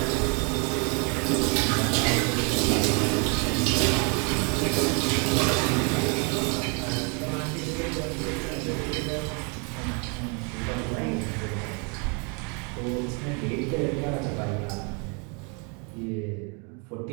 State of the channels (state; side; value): quieter; left; 34.6 dB